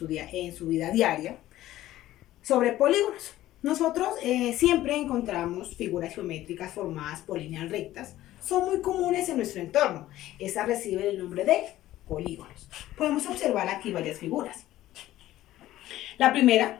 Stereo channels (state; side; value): quieter; right; 14.7 dB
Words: vida diaria sobre polígonos. Nosotros siempre encontramos figuras geométricas formadas por líneas rectas. Son muy comunes en nuestro entorno. Estas reciben el nombre de polígonos. Podemos observar aquí varias figuras. La